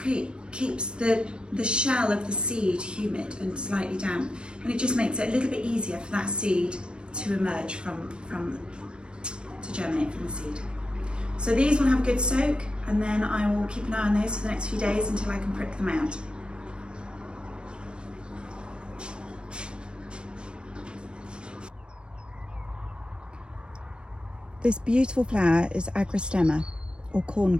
keeps the shell of the seed humid and slightly damp, and it just makes it a little bit easier for that seed to emerge to germinate from the seed. So these will have a good soak, and then I will keep an eye on those for the next few days until I can prick them out. This beautiful flower is agrostemma, or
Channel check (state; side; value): late; left; 0.054 ms